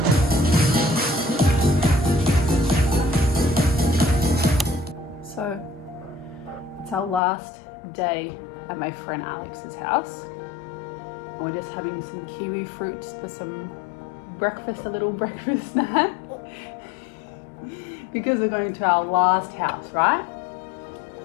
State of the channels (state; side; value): drops out; right; at 7.2 s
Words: So it's our last day at my friend Alex's house. And we're just having some kiwi fruits for some breakfast, a little breakfast snack. Because we're going to our last house, right?